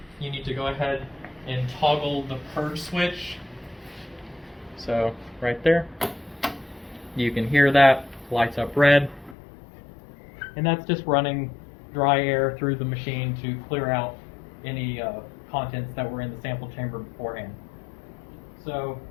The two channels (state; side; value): drops out; right; at 9.3 s